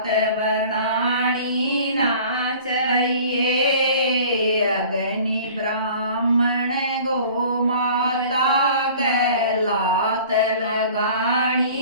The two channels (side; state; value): both; inverted; correlation -0.46